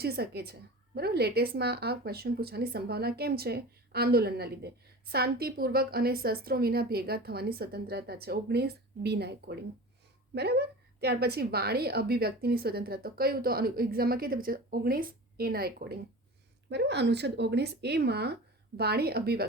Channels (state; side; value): normal; both; correlation 0.35